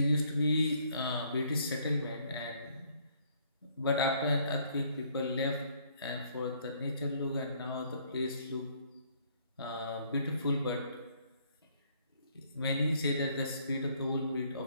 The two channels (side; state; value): both; inverted; correlation -0.64